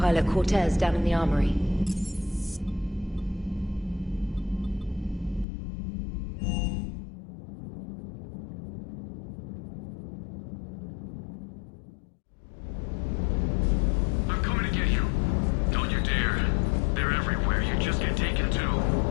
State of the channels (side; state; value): right; drops out; at 5.5 s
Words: Cortez down in the armory. I'm coming to get you. Don't you dare. They're everywhere. You just get taken too.